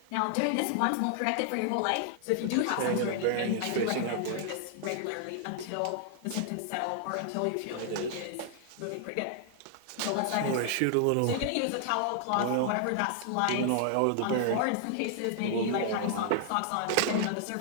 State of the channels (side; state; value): both; different; correlation 0.00